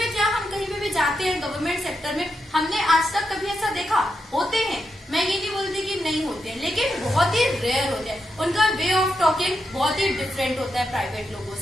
क्या हम कहीं पे भी जाते हैं गवर्नमेंट सेक्टर में, हमने आज तक कभी ऐसा देखा, होते हैं, मैं ये नहीं बोलती कि नहीं होते हैं, लेकिन बहुत ही रेयर होते हैं, उनका वे ऑफ टॉकिंग बहुत ही डिफरेंट होता है प्राइवेट लोगों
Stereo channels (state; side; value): normal; both; correlation 0.85